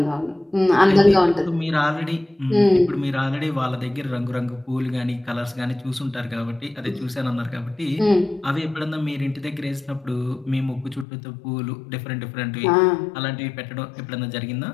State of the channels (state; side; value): drops out; right; at 11.1 s